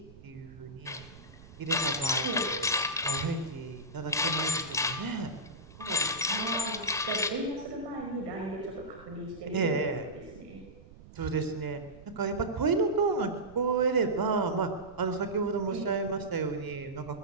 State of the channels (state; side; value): noise; right; rumble, 19 dB below the sound